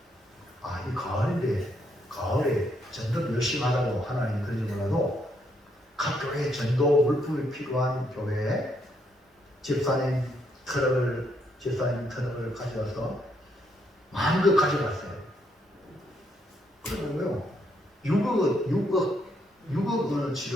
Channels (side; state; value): both; normal; correlation 0.74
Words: 이 가을인데 가을에 전도 열심히 하라고 하나님이 그러지 몰라도 각 교회에 전도 물품이 필요한 교회에 집사님 트럭을 가져와서 마음껏 가져갔어요. 그러고요 6억